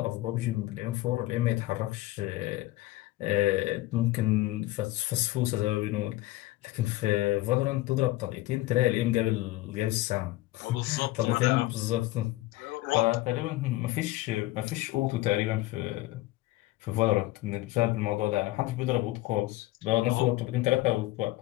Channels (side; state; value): right; quieter; 17.4 dB